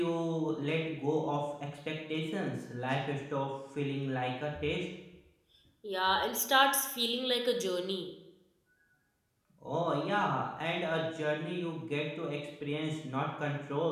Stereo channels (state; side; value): identical; both; correlation 1.00